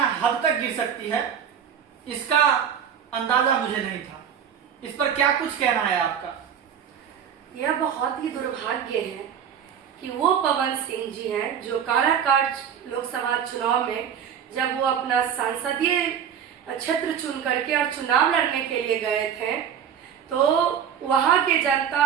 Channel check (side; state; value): left; quieter; 8.5 dB